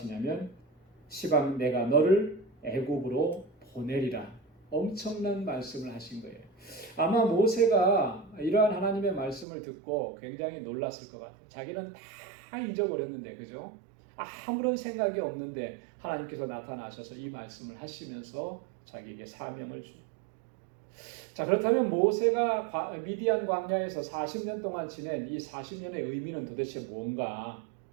시방 내가 너를 애굽으로 보내리라. 엄청난 말씀을 하신 거예요. 아마 모세가 이러한 하나님의 말씀을 듣고 굉장히 놀랐을 것 같아요. 자기는 다 잊어버렸는데 그죠? 아무런 생각이 없는데 하나님께서 나타나셔서 이 말씀을 하시면서 자기에게 사명을 주죠. 자, 그렇다면 모세가 미디안 광야에서 40년 동안 지낸 이 40년의 의미는 도대체 뭔가?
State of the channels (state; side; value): drops out; left; at 9.5 s